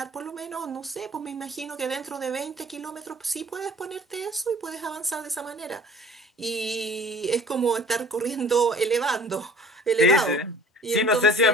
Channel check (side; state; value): both; normal; correlation 0.48